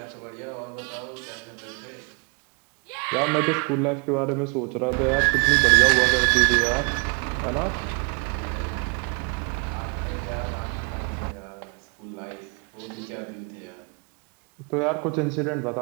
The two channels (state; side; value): quieter; left; 34.9 dB